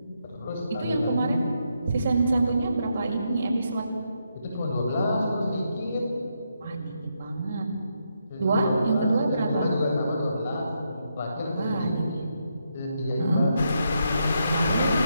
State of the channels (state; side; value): inverted; both; correlation -0.81